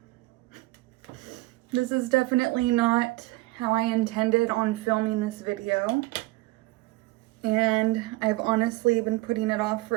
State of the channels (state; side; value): quieter; left; 20.1 dB